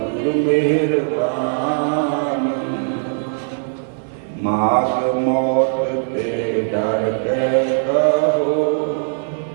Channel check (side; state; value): left; silent; 57 dB below the other